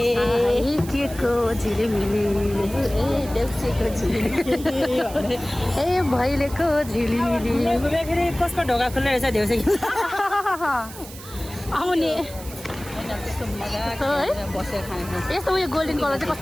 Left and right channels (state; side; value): noise; right; hiss, 16 dB below the sound